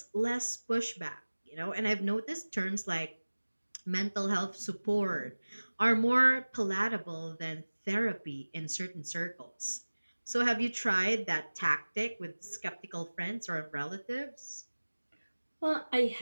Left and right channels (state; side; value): inverted; both; correlation -1.00